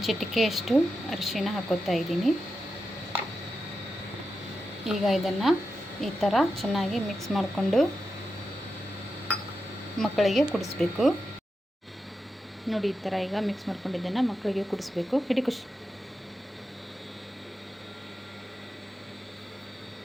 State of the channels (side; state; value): both; normal; correlation 0.88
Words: ಚಿಟಿಕೆಯಷ್ಟು ಅರಿಶಿಣ ಹಾಕೋತಾ ಇದ್ದೀನಿ. ಈಗ ಇದನ್ನು ಈ ಥರ ಚೆನ್ನಾಗಿ ಮಿಕ್ಸ್ ಮಾಡಿಕೊಂಡು ಮಕ್ಕಳಿಗೆ ಕುಡಿಸ್ಬೇಕು ನೋಡಿ. ಈ ಥರ ಈಗ ಮಿಕ್ಸ್ ಮಾಡ್ಕೊಂಡಿದ್ದನ್ನು ಮಕ್ಕಳಿಗೆ ಕುಡಿಸ್ಬೇಕು. ಹಿಡಿ ಖುಷಿ.